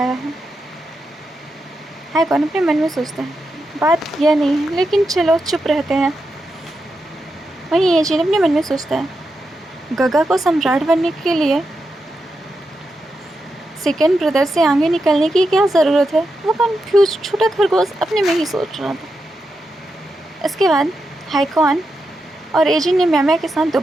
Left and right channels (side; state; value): both; normal; correlation 0.87